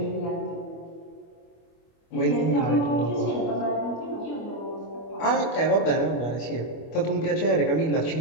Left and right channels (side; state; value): right; late; 25 ms